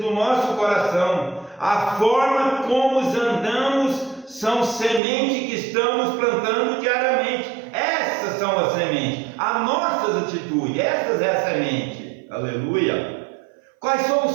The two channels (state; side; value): drops out; left; at 5.0 s